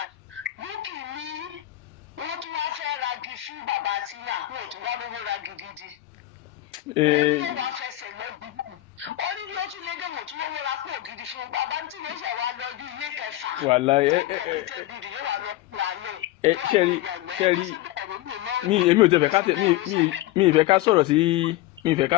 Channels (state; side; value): quieter; right; 15.6 dB